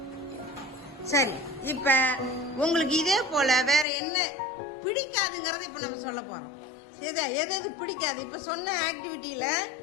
சரி, இப்ப உங்களுக்கு இதே போல வேற என்ன பிடிக்காதுங்கறத இப்ப நம்ம சொல்ல போறோம். எது எது பிடிக்காது? இப்ப சொன்ன ஆக்டிவிட்டியில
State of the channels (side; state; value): right; drops out; at 3.9 s